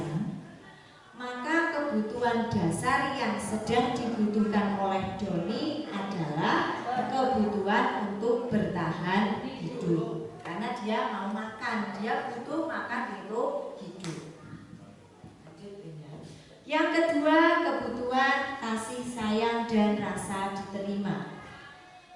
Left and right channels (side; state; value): both; identical; correlation 1.00